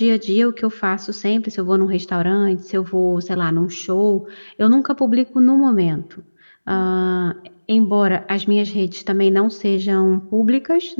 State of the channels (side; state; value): both; inverted; correlation -1.00